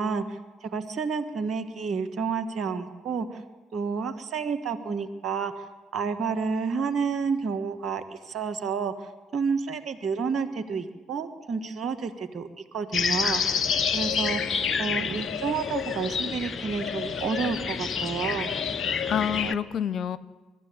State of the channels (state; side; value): normal; both; correlation 0.61